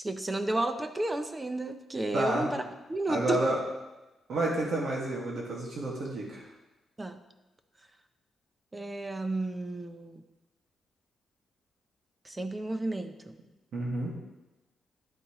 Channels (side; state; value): both; normal; correlation 0.85